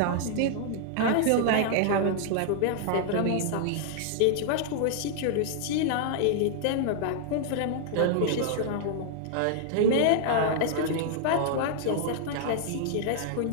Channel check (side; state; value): both; different; correlation -0.01